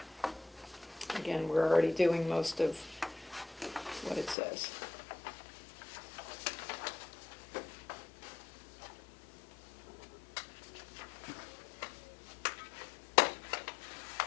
Again, we're already doing most of what it says.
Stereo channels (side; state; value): right; drops out; at 4.4 s